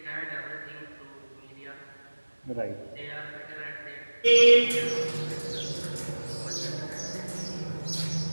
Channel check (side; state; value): both; inverted; correlation -1.00